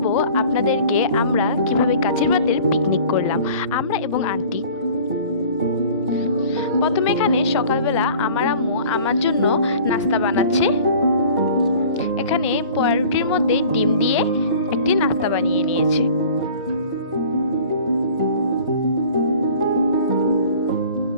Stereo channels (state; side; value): inverted; both; correlation -0.46